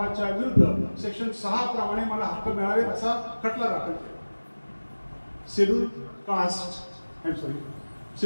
विरुद्ध सेक्शन 6 प्रमाणे मला हक्क मिळावेत असा खटला दाखल केला.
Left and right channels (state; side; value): inverted; both; correlation -1.00